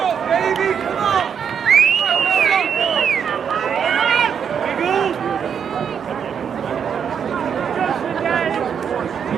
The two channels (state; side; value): quieter; left; 7.5 dB